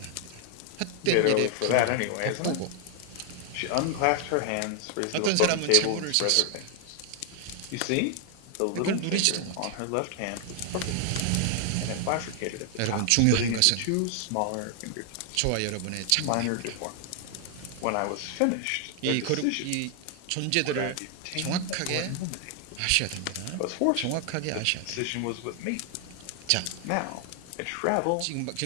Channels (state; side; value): different; both; correlation 0.00